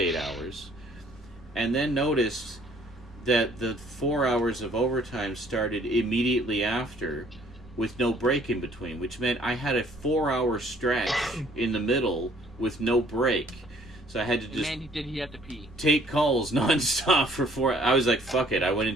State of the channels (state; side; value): normal; both; correlation 0.59